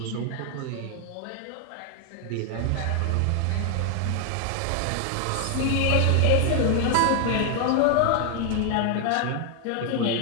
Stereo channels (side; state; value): both; different; correlation 0.00